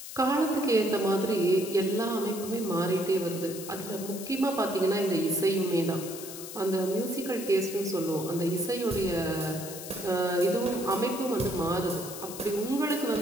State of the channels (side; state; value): left; noise; hiss, 11 dB below the sound